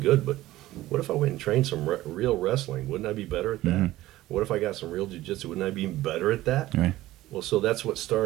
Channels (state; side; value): quieter; left; 16.1 dB